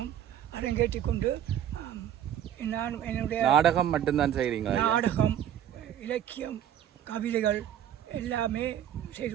அரங்கேற்றி கொண்டு நான் என்னுடைய நாடகம் மட்டும்தான் செய்கிறீங்க? நாடகம், இலக்கியம், கவிதைகள் எல்லாமே செய்து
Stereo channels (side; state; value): left; quieter; 10.5 dB